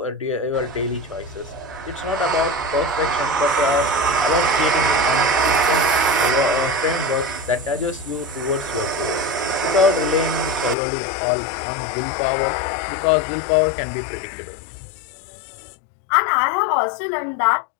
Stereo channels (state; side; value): drops out; right; at 10.8 s